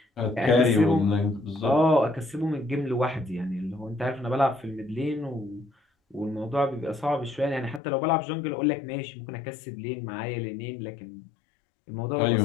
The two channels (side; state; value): right; drops out; at 7.8 s